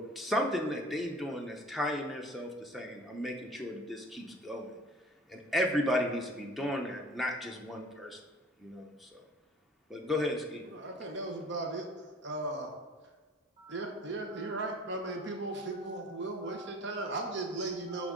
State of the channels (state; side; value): normal; both; correlation 0.46